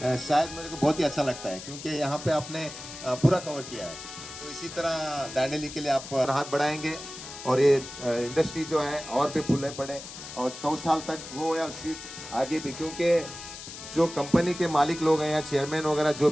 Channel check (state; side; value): noise; left; hiss, 12 dB below the sound